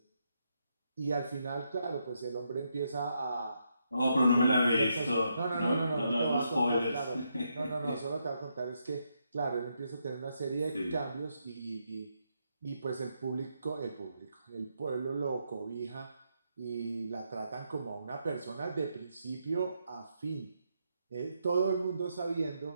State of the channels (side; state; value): both; inverted; correlation -0.80